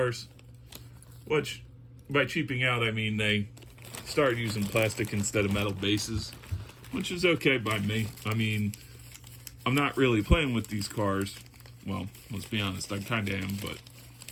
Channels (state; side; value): identical; both; correlation 1.00